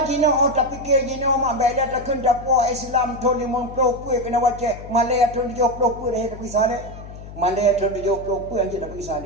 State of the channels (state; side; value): noise; left; hum, 14 dB below the sound